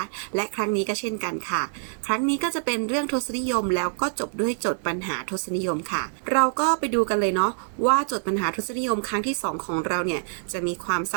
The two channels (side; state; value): left; silent; 61 dB below the other